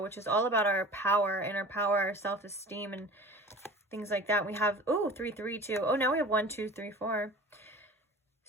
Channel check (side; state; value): both; normal; correlation 0.40